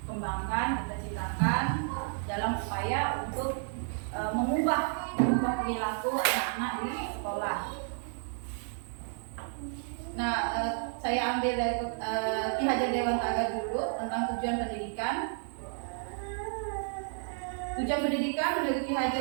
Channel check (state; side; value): silent; left; 57 dB below the other